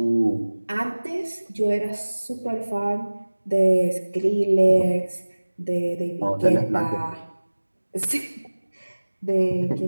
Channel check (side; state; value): both; inverted; correlation -1.00